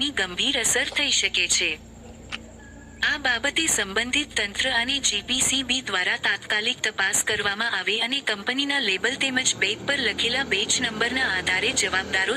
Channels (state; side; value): identical; both; correlation 1.00